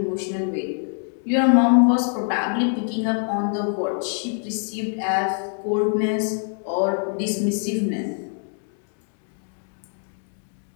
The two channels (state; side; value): silent; right; 57 dB below the other